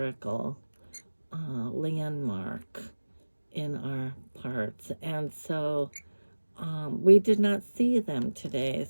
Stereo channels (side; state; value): both; inverted; correlation -1.00